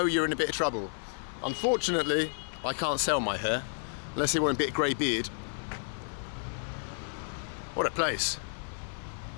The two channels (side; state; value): right; silent; digital silence